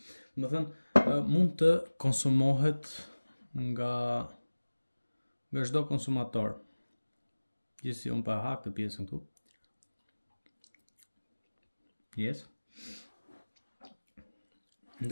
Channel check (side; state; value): both; inverted; correlation -1.00